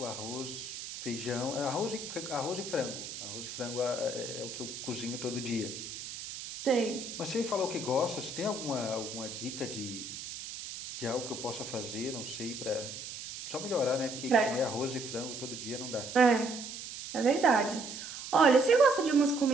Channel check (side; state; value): right; noise; hiss, 9 dB below the sound